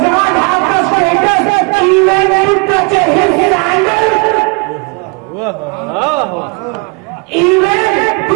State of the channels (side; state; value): left; quieter; 32.1 dB